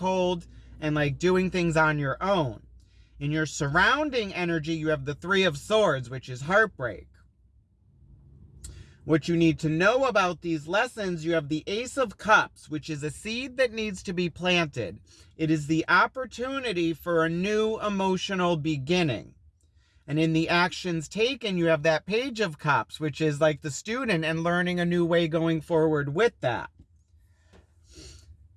and like doing things on your own. In your surrounding energy, you have the Three of Swords, which is heartbreak. What you need to know about these lessons, you have the Ace of Cups, which is a seed that needs to be planted. It is the opportunity for a new emotional beginning. And in the actions taken, you have that Page of Cups, which is like the student and learning a new way going forward with that.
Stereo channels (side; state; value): both; identical; correlation 1.00